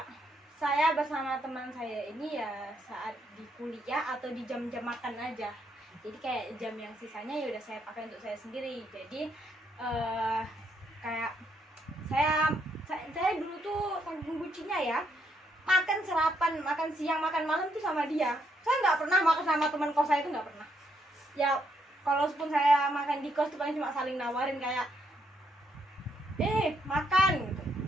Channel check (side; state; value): both; normal; correlation 0.75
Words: saya bersama teman saya ini ya saat di kuliah atau di jam-jam makan aja. Jadi kayak jam yang sisanya ya udah saya pakai untuk saya sendiri. Jadi kayak saya dulu tuh saking bucinnya ya, makan sarapan, makan siang, makan malam tuh sama dia. Saya nggak pernah makan sama teman kos saya, itu nggak pernah. Ya kalaupun saya makan di kos tuh paling cuma saling nawarin kayak makan gitu.